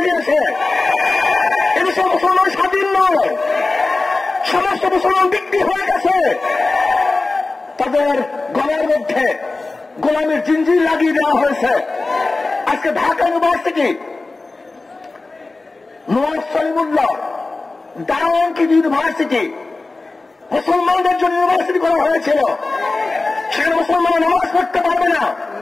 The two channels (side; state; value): right; quieter; 3.4 dB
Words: দিয়েছে। এদেশে মুসলমান স্বাধীন নয়, সমস্ত মুসলমান বিক্রি হয়ে গেছে। তাদের গলার মধ্যে গোলামের জিঞ্জির লাগিয়ে দেওয়া হয়েছে। আজকে ঢাকা ইউনিভার্সিটি নওয়াজ সলিমুল্লাহ দাওয়ানকি ইউনিভার্সিটি মুসলমানদের জন্য ইউনিভার্সিটি করা হয়েছিল। সেখানে মুসলমানরা নামাজ পড়তে পারবে না,